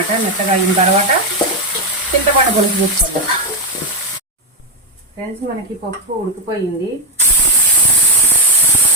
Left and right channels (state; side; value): normal; both; correlation 0.04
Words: మెత్తగా అయిన తర్వాత చింతపండు పులుసు తీసుకుందాం ఫ్రెండ్స్. మనకి పప్పు ఉడికిపోయింది.